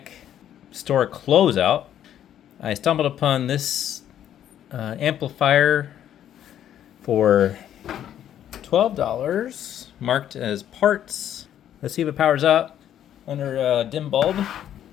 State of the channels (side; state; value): right; quieter; 10.6 dB